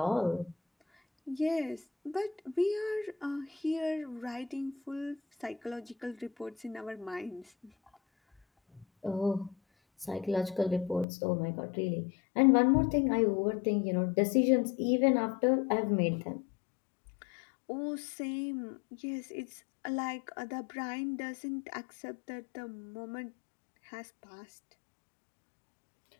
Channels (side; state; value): right; drops out; at 11.1 s